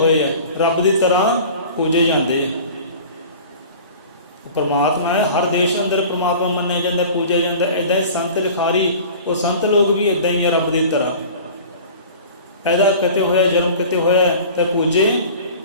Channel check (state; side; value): inverted; both; correlation -0.41